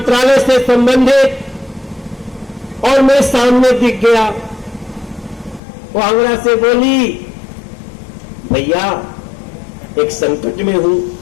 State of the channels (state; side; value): drops out; right; at 5.6 s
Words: से संबंधित, और मैं सामने दिख गया। वो आंगड़ा से बोली, भैया एक संकट में हूं।